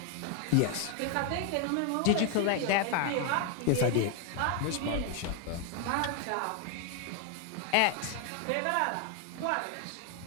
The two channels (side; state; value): both; different; correlation 0.00